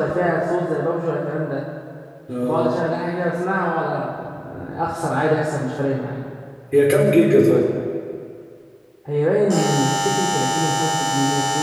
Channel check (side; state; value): both; identical; correlation 1.00